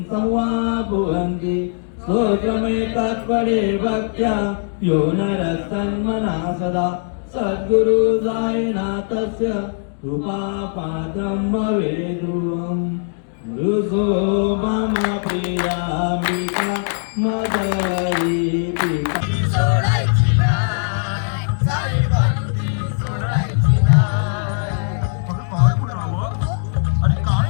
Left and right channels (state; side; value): silent; right; digital silence